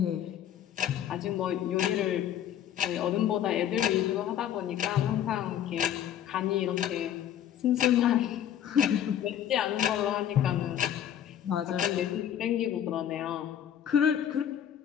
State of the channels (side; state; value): right; quieter; 10.3 dB